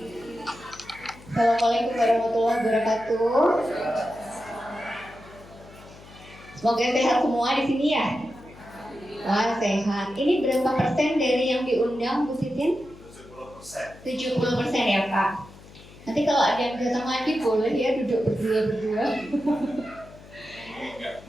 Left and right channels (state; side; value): noise; left; hum, 20 dB below the sound